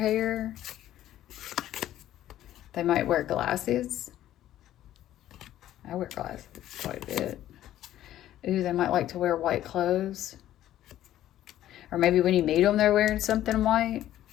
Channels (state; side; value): quieter; right; 12.8 dB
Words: They might wear glasses. I wear glasses quite a bit. Ooh, they might like to wear white clothes. Or maybe when you meet them, they're wearing something white.